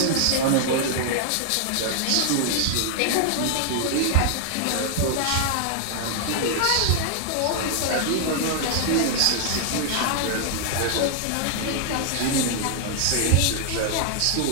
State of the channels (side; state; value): both; different; correlation 0.00